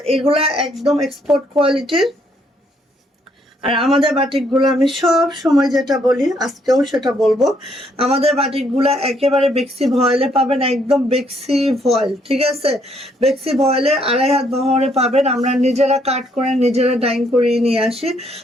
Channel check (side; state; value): both; normal; correlation 0.70